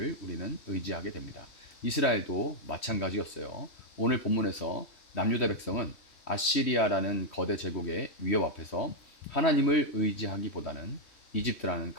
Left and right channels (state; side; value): late; right; 3.1 ms